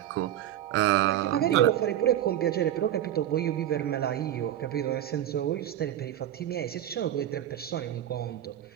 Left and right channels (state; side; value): quieter; left; 11.7 dB